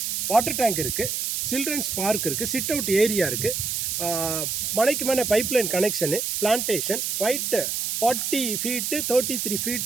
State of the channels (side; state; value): right; noise; hiss, 1 dB below the sound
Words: வாட்டர் டேங்க் இருக்குது, சில்ட்ரன்ஸ் பார்க் இருக்குது, சிட் அவுட் ஏரியா இருக்குது, மனைக்கு மேலே pipeline connection, plantation, white 40 feet 33